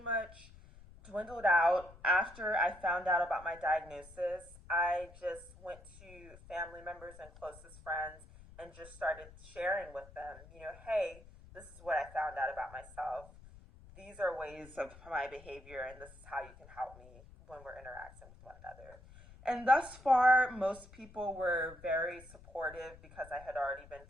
dwindled out after I found out about my diagnosis. I just went to family members and closest friends and just started sharing with them, hey, this is what I found out about myself. These are ways of my behavior, and this is how you can help me when we're interacting with one another. And thus far, most people were very supportive because I had already been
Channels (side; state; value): left; noise; rumble, 20 dB below the sound